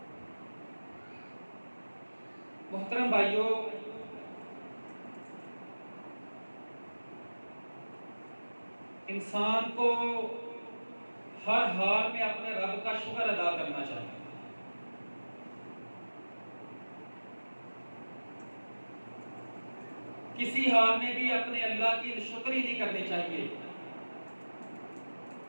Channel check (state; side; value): inverted; both; correlation -1.00